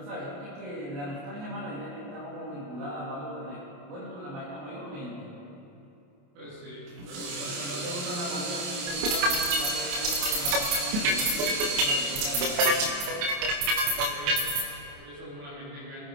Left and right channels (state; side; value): late; left; 28 ms